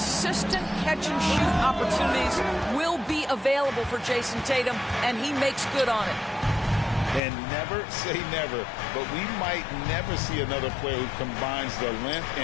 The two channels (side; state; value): right; drops out; at 7.2 s